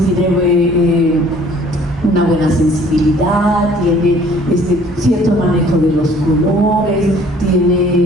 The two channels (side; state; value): both; normal; correlation 0.55